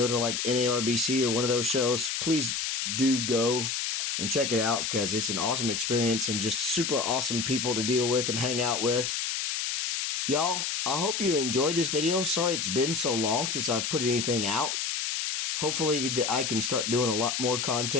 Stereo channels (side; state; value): left; noise; hiss, 1 dB below the sound